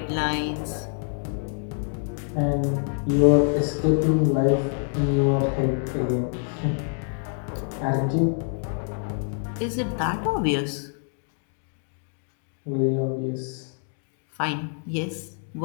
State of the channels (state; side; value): silent; right; 56 dB below the other